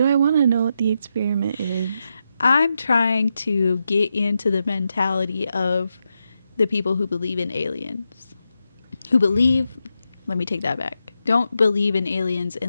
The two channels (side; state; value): both; inverted; correlation -0.86